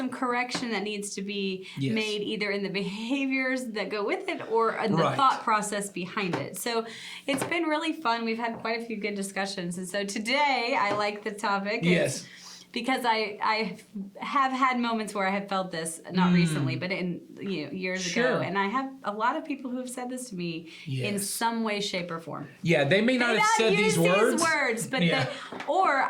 correction that needs to be Yes. made either in the behaviors that go with it or in the Right. thought process behind it. So it's been really fun. We've had quite a few good discussions. And so today I like the topic. Yes. Because I have had moments where I have felt this, not recently, but in years Sure. ago, and I have a lot of people who have said this to me in Yes. some way, shape, or form. Yeah, they may not They have not said use these words. but Yeah. or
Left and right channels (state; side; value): identical; both; correlation 1.00